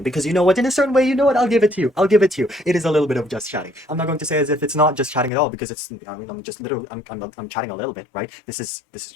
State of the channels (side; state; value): right; drops out; at 5.3 s